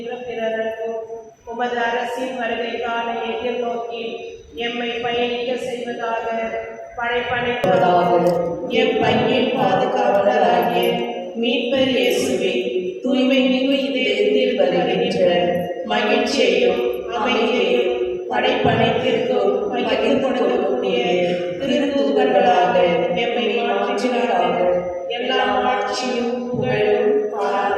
பிறருக்கும் உமது அரசின் வருகைக்கான எதிர்நோக்கி எம்மை பயணிக்க செய்வதாக படைப்படைப்பதாக எம் பங்கின் பாதுகாவலராகிய மீட்பர் இயேசுவே, தூய்மை மிகு இதயத்தில் வருகின்ற மகிழ்ச்சியையும் அமைதியையும் படைப்படைத்திற்கும் பகிர்ந்து கொடுக்கக்கூடிய திருத்தூதர்களாக எம்மை மாற்றினாராக. எல்லா ஆட்சியும் புகழும்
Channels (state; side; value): identical; both; correlation 1.00